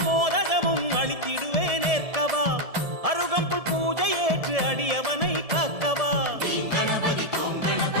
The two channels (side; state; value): left; late; 1.7 ms